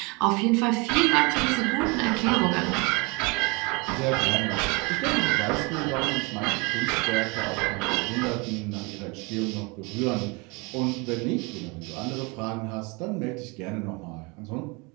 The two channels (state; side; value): quieter; left; 28.3 dB